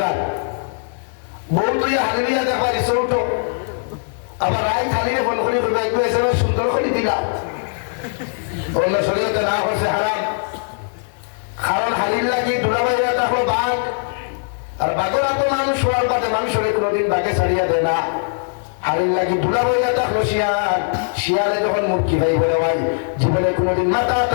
বউ তুই হালিয়া দেখবা রিসোর্ট আবার রায় খালিয়ে ফোন করি সুন্দর করে দিলা অন্য শরীয়তে না হচ্ছে হারাম কারণ হালির লাগি দুলাবাইয়া দেখো বাঘ আর বাঘরা তো মানুষ হওয়ার বাদে মানুষের কোনোদিন বাঘে ছাড়িয়া দেয় না হালির লাগি দুলাবাইয়া দেখলো শিয়াল শিয়ালে যখন মুরগি ভাই বলে ভাই জীবনে কোনোদিন মাথা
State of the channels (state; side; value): silent; right; digital silence